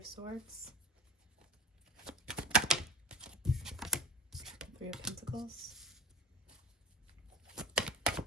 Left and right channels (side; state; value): both; normal; correlation 0.34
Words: Swords, Three of Pentacles.